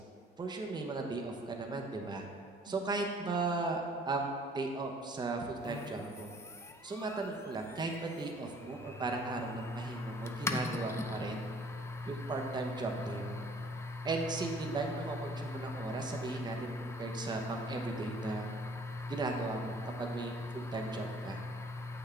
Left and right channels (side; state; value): both; normal; correlation 0.56